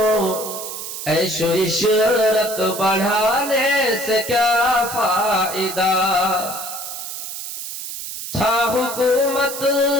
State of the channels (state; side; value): noise; right; hiss, 8 dB below the sound